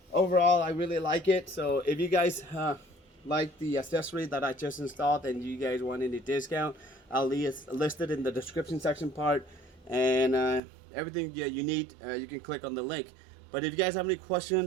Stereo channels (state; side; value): drops out; left; at 10.6 s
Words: overall, I really like it. So if you guys like the accessory that I just installed and you guys want any discount, I'll list it in the description section part, and everything you need, you can click on the link. But if you guys have any